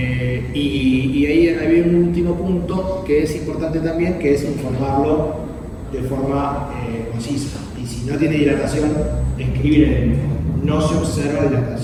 Y ahí había un último punto que es importante también, que es informarlo de forma concisa. Y si no tiene dilatación, escribir en el informe. No se observa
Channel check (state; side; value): identical; both; correlation 1.00